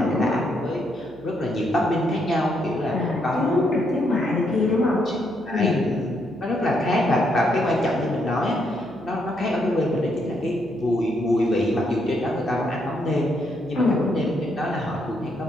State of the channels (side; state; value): right; noise; hum, 24 dB below the sound